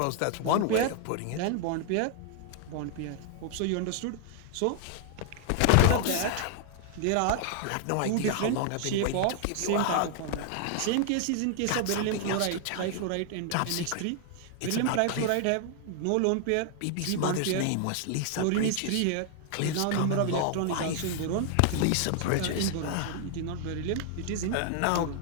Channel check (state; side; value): different; both; correlation 0.00